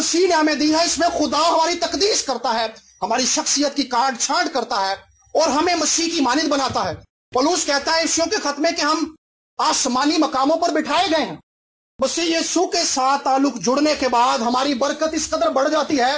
نے ہمیں دی ہے اس میں خدا ہماری تقدیس کرتا ہے, ہماری شخصیت کی کاٹ چھانٹ کرتا ہے اور ہمیں مسیح کی مانند بناتا ہے. پولس کہتا ہے افسیوں کے خط میں کہ ہم آسمانی مقاموں پر بٹھائے گئے ہیں. مسیح یسوع کے ساتھ تعلق جڑنے کے بعد ہماری برکت اس قدر بڑھ جاتی ہے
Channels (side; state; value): both; identical; correlation 1.00